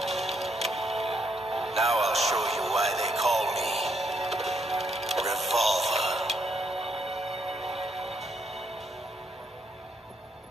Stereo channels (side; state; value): both; normal; correlation 0.75